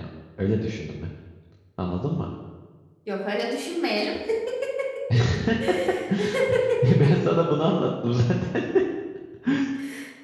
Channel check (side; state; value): both; identical; correlation 1.00